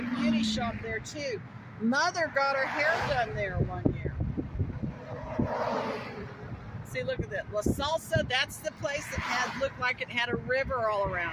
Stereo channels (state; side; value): identical; both; correlation 1.00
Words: beauty shop there too. Mother got her hair done there one year. See, look at that. La Salsa, that's the place that looked like it had a river all around